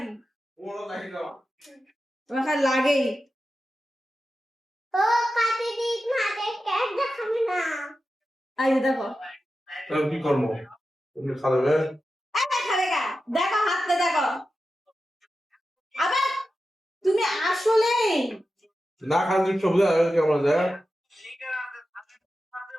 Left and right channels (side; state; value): both; normal; correlation 0.92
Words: তোমার খালি লাগেই। ও কাটি দিস মাঝে কেক দেখাবি না। এই যে দেখো। কি করবো? তুমি খাবে? এই খাবে গা, দেখো হাতটা দেখো। আবার তুমি আসলেই না খালি সবজি আর কেমন যায়?